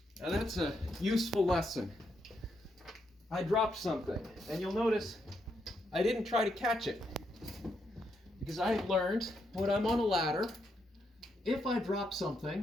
Now that's a useful lesson. I dropped something, and you'll notice I didn't try to catch it, Because I learned when I'm on a ladder, if I drop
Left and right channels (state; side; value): normal; both; correlation 0.79